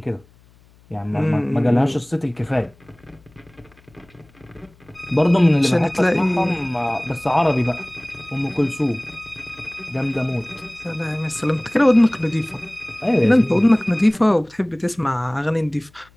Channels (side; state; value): left; noise; hum, 29 dB below the sound